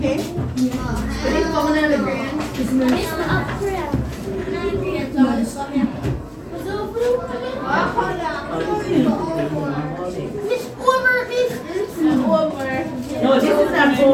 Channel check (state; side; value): identical; both; correlation 1.00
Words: No, this is not